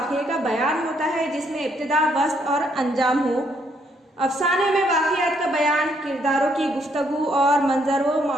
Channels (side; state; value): both; normal; correlation 0.71